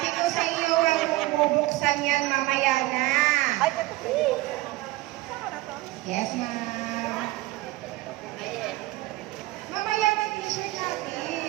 ko sa iyo, huwag mong bubuksan yan mamaya na. Ay, totoo. Yes, ma'am. Ayan. Mamaya na t-shirt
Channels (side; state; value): left; quieter; 18.8 dB